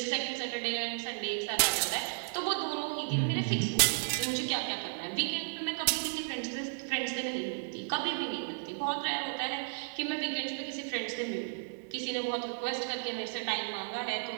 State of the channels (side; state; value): left; silent; digital silence